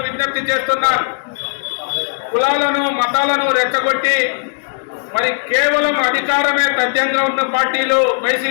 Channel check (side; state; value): right; silent; digital silence